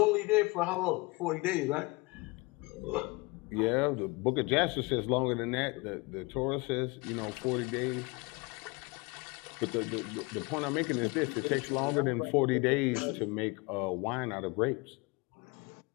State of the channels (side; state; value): right; quieter; 25.9 dB